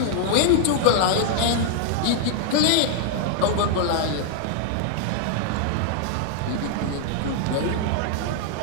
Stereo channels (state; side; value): different; both; correlation 0.00